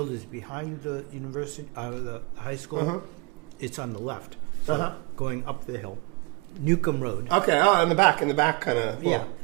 is behind the university, the high school, it's on the left. So going up the hill. Newcomb Road. Okay, in the back kind of. Yeah,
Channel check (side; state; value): left; quieter; 27.9 dB